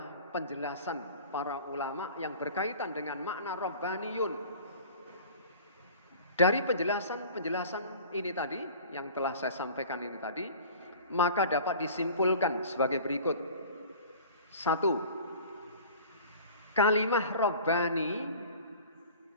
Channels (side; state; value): both; inverted; correlation -0.43